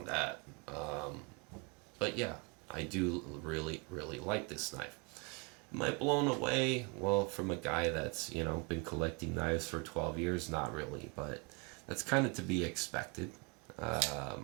that. But yeah, I do really like this knife. Am I blown away? Well, from a guy that's been collecting knives for 12 years, not really, but that's kind of to be expected.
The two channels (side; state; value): left; quieter; 31.0 dB